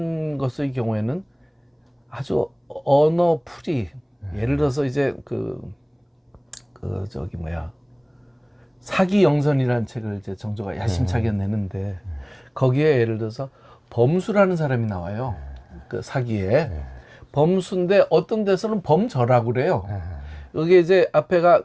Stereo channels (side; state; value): both; identical; correlation 1.00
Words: 것의 경우에는 아주 언어 풀이, 예를 들어서 이제 저기 뭐야, 사기영선이라는 책을 이제 정조가 야심차게 내는데 거기에 예를 들어서 범수라는 사람이 나와요. 그 사기에. 범수인데 어떤 데서는 범저라고 그래요. 여기 이제 앞에가